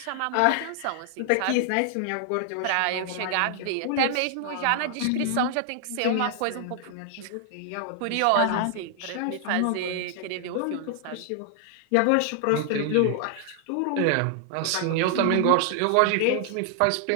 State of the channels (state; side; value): different; both; correlation 0.00